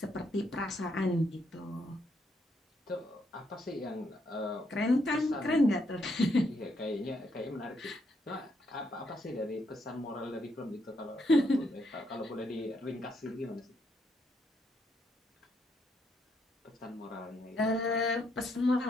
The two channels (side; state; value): both; normal; correlation 0.76